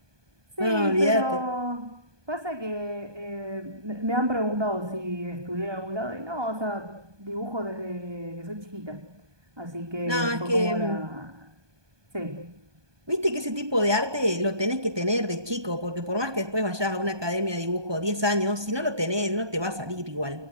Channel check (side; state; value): left; late; 1.2 ms